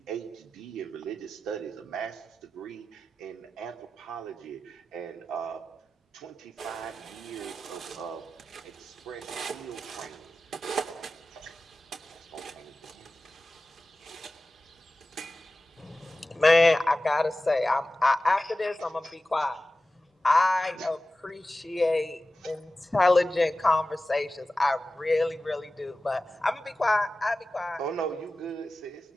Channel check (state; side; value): normal; both; correlation 0.95